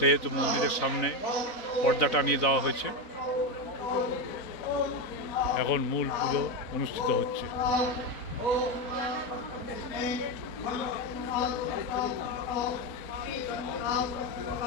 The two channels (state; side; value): late; right; 4.0 ms